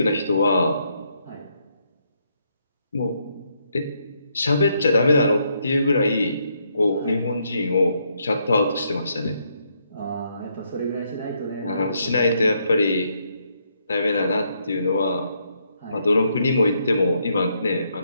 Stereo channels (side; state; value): both; inverted; correlation -0.75